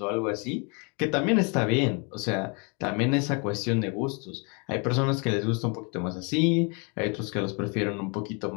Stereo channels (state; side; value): quieter; right; 33.8 dB